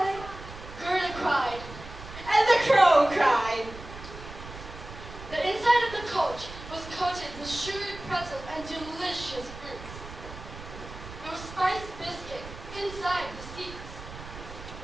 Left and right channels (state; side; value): noise; right; rumble, 13 dB below the sound